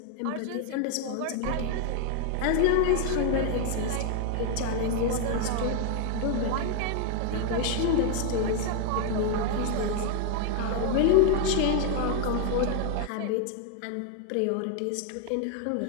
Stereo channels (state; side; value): different; both; correlation 0.00